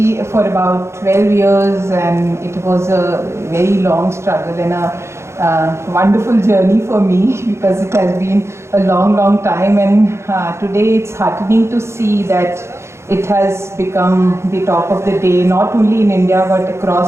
for about 12 years, and it was a very long struggle and a wonderful journey for me because it has been a long, long time, and today it's heartening to see that It has become the talk of the day, not only in India but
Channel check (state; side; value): late; left; 0.13 ms